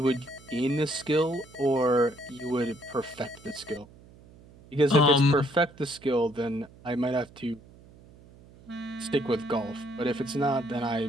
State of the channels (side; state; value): right; noise; hum, 23 dB below the sound